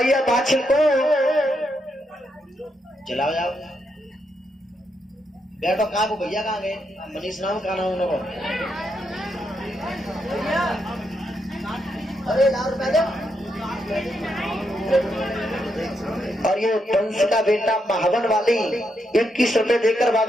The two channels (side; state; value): both; normal; correlation 0.81